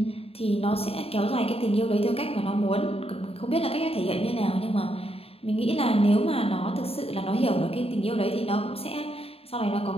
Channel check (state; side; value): late; right; 0.28 ms